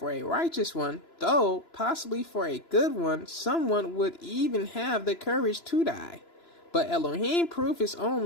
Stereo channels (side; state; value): right; late; 3.0 ms